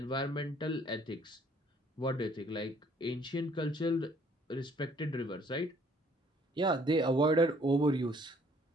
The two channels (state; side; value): normal; both; correlation 0.60